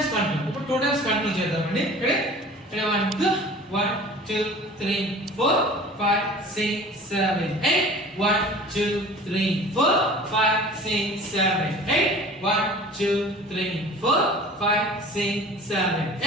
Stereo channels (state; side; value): normal; both; correlation 0.43